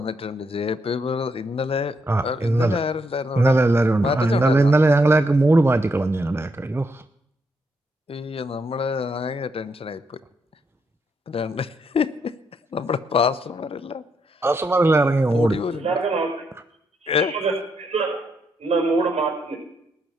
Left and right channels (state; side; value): normal; both; correlation 0.78